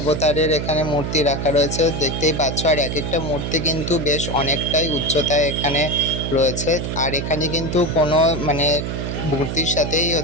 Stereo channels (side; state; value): right; noise; hum, 3 dB below the sound